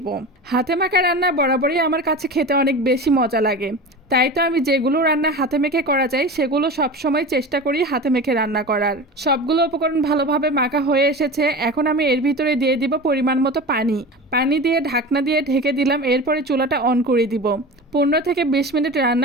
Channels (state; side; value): normal; both; correlation 0.31